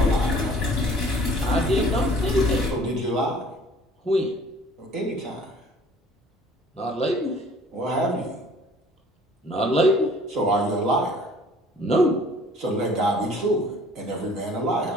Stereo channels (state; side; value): normal; both; correlation 0.53